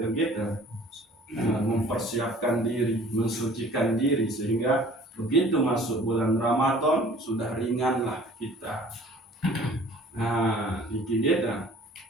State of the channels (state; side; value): normal; both; correlation 0.50